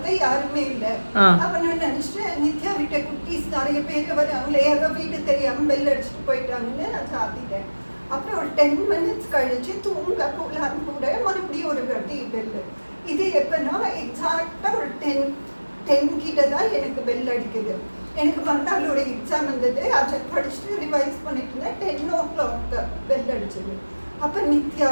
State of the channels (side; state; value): both; inverted; correlation -1.00